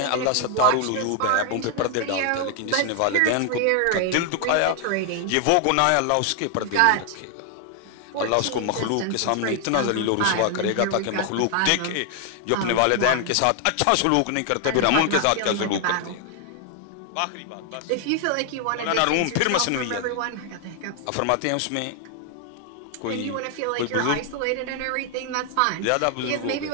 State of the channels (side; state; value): both; different; correlation 0.00